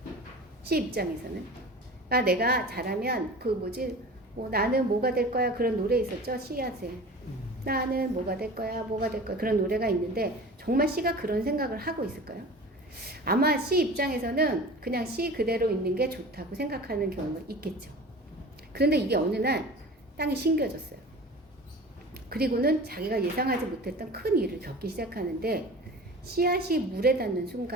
씨 입장에서는 내가 자라면 나는 뭐가 될 거야 그런 노래 있었죠. 씨앗에 나는 뭐가 될 거야 그런 노래가 있는데 정말 씨가 그런 생각을 하고 있을까요? 아마 씨 입장에서는 그냥 씨 그대로 있는 게 좋다고 생각하는 경우가 있겠죠. 그런데 이게 어느 날 땅이 심겨졌어요. 그리고는 자기가 예상하지 못했던 큰 일을 겪기 시작하는데 씨앗이 물에 닿는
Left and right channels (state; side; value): normal; both; correlation 0.38